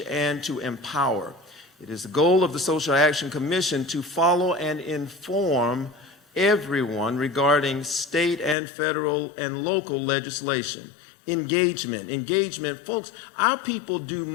and to empower. It is the goal of the Social Action Commission to follow and inform everyone regarding state and federal and local legislation. Engagement, folks, our people do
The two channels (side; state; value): right; drops out; at 8.6 s